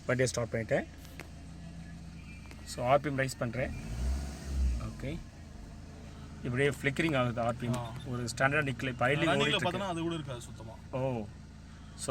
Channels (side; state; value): both; identical; correlation 1.00